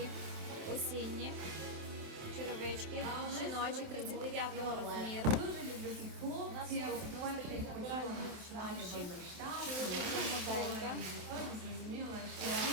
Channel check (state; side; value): late; left; 27 ms